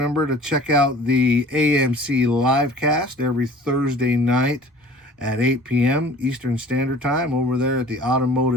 to check out the AMC livecast every Thursday night at 8 p.m. Eastern Standard Time over there at the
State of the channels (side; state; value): both; normal; correlation 0.47